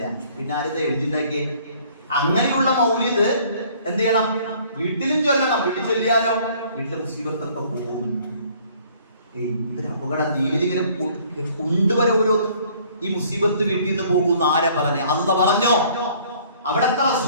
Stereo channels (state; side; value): inverted; both; correlation -0.57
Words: പിന്നെ ആരിത് എഴുതിണ്ടാക്കിയേ? അങ്ങനെയുള്ള മൗലിദ് എന്ത് ചെയ്യണം? വീട്ടിലും ചൊല്ലണം. വീട്ടിൽ ചൊല്ലിയാലോ വീട്ടിലെ മുസീബത്തൊക്കെ പോകും. ഇതൊരു അപകട ദീനിലിങ്ങനെ കൊണ്ടുവരെ ഓരോന്നും. ഈ മുസീബത്ത് വീട്ടിൽ നിന്ന് പോകുന്ന ആരാ പറഞ്ഞേ? അല്ല പറഞ്ഞോ? അവിടത്തെ